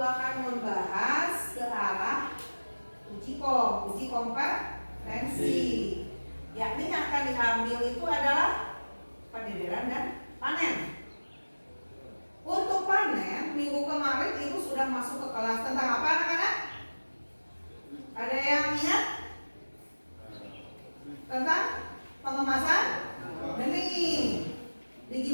akan membahas ke arah uji kompetensi. Yakni yang akan diambil itu adalah pendederan dan panen. Untuk panen, minggu kemarin Ibu sudah masuk ke kelas tentang apa anak-anak? Ada yang ingat? Tentang pengemasan benih.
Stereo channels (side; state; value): both; inverted; correlation -1.00